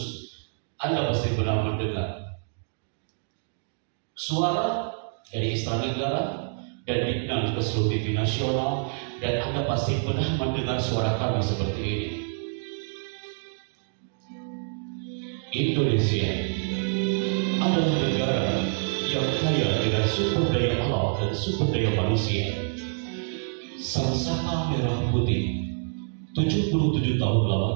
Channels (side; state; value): left; silent; digital silence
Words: Anda pasti pernah mendengar suara dari Istana Negara dan dikenal ke seluruh TV nasional, dan Anda pasti pernah mendengar suara kami seperti ini. Indonesia adalah negara yang kaya dengan sumber daya alam dan sumber daya manusia. Sangsaka merah putih 77 tahun